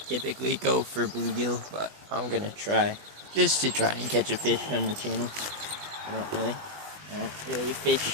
typically go for bluegill, but I'm gonna try. Just to try and catch a fish on the channel. I don't really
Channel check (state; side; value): late; left; 20 ms